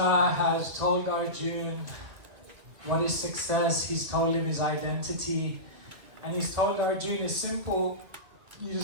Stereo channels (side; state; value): left; late; 1.9 ms